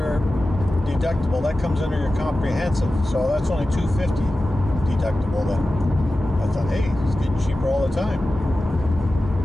deductible. That comes under your comprehensive. So that's only $250 deductible then. I thought, hey, it's getting cheaper all the time.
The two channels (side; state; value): both; normal; correlation 0.94